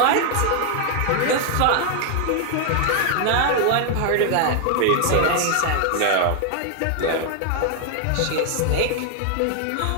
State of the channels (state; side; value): different; both; correlation 0.00